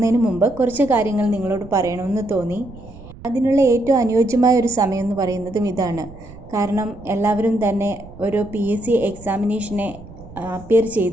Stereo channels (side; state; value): right; noise; rumble, 18 dB below the sound